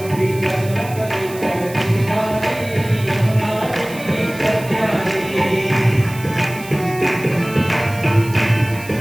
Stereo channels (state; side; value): noise; right; hiss, 17 dB below the sound